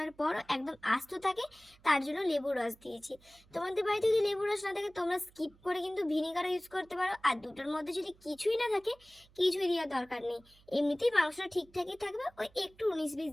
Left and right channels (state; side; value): noise; right; hum, 28 dB below the sound